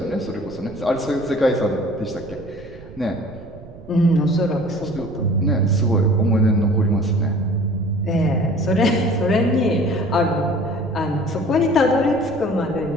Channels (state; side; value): noise; right; rumble, 18 dB below the sound